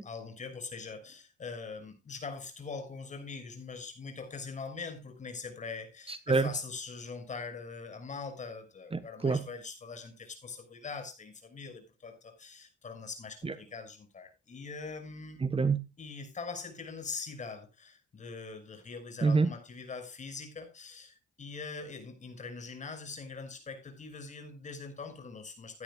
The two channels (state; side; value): normal; both; correlation 0.61